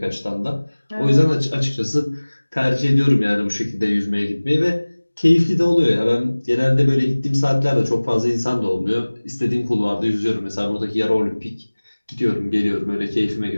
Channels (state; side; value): inverted; both; correlation -1.00